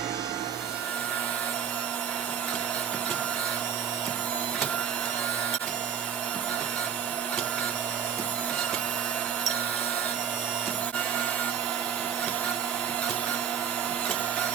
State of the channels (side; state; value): left; quieter; 8.2 dB